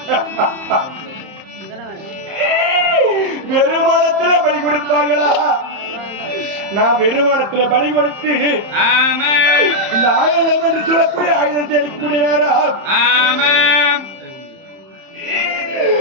வெறுமானத்திலே பலி கொடுப்பார்களா? நான் வெறுமானத்திலே பலி கொடுத்து இந்த ஆயுதம் என்று சொல்லக்கூடிய ஆயுதத்தை எடுக்கக்கூடிய நேரம்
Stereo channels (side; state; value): left; late; 30 ms